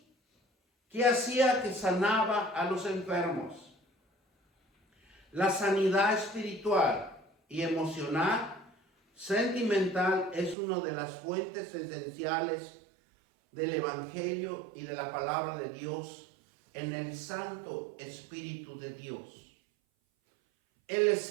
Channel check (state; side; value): drops out; left; at 10.6 s